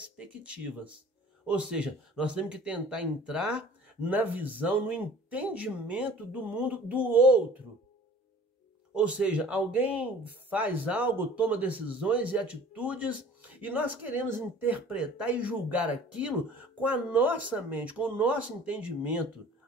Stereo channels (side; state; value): both; normal; correlation 0.47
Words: Ou seja, nós temos que tentar entrar na visão, no entendimento do mundo do outro. Ou seja, alguém faz algo, toma decisões e atitudes e nós queremos interpretar e julgar aquilo com a nossa mente, com o nosso entendimento.